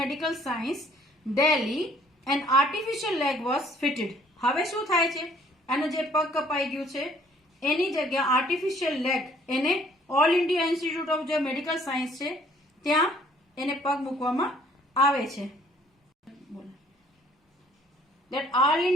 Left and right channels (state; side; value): normal; both; correlation 0.59